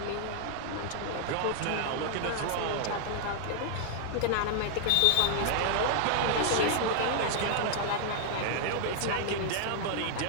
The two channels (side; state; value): both; different; correlation 0.00